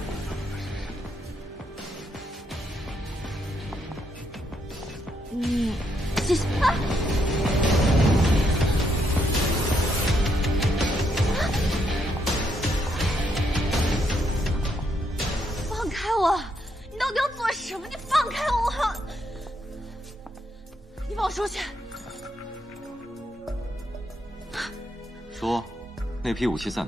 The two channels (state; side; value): normal; both; correlation 0.77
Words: 谢谢。啊！放开我！你到底要做什么？你放开我！你放我出去！说，那批武器在